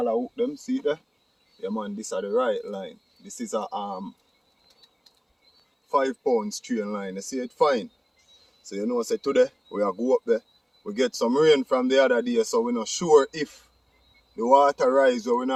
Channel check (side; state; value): both; identical; correlation 1.00